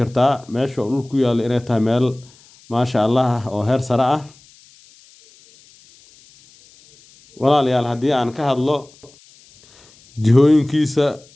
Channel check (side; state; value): left; noise; hiss, 28 dB below the sound